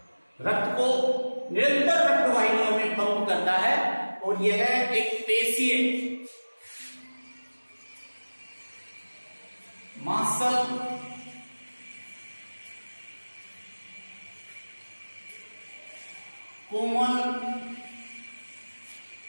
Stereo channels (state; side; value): inverted; both; correlation -1.00